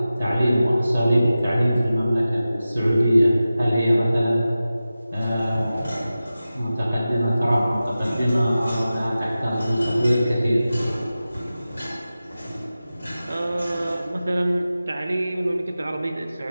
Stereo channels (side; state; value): both; inverted; correlation -0.95